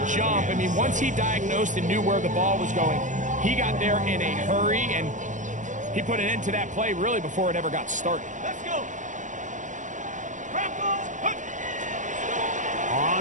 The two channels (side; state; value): left; late; 0.36 ms